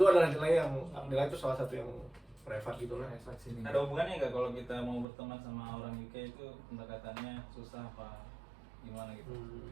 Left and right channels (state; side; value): drops out; left; at 5.1 s